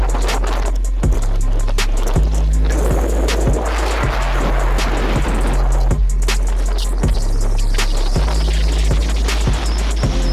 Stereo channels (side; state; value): both; identical; correlation 1.00